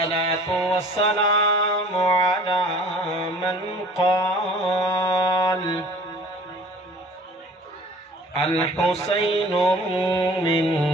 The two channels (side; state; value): both; normal; correlation 0.48